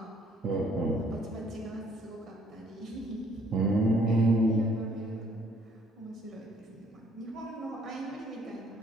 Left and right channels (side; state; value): both; normal; correlation 0.63